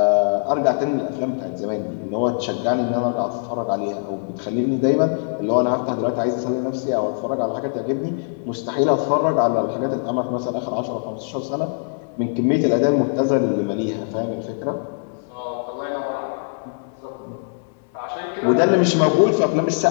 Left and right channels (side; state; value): right; silent; 64 dB below the other